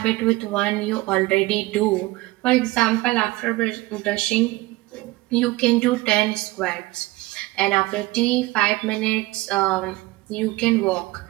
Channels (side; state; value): left; quieter; 20.5 dB